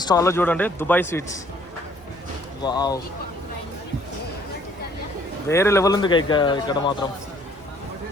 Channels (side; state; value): both; normal; correlation 0.61